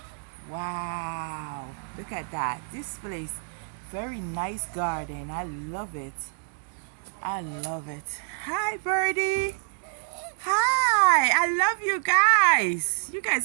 Wow. Look at that. This place, very nice garden. I love it. I love it. Hi, birdie. Hi. I love you guys. You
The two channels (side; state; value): left; silent; digital silence